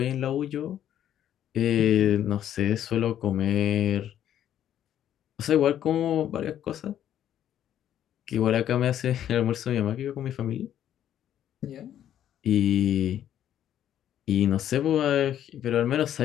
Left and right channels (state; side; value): quieter; right; 10.8 dB